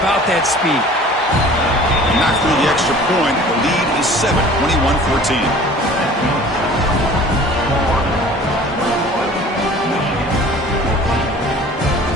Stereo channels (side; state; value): both; normal; correlation 0.46